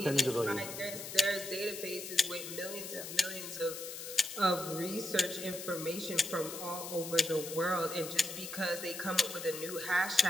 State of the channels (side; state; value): left; noise; hiss, 9 dB below the sound